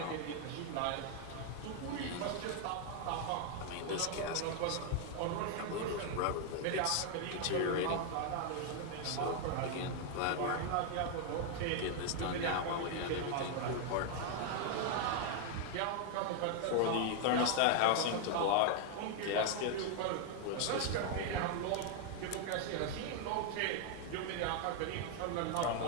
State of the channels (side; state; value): both; different; correlation 0.00